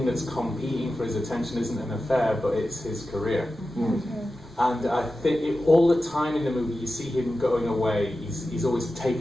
that's competing for his attention isn't an affair, but it's his career. And I think all the time in the movie, you see him going away. He's always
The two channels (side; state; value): both; normal; correlation 0.93